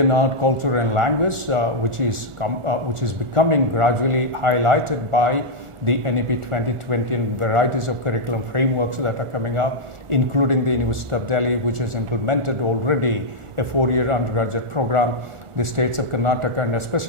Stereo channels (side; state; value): left; late; 1.4 ms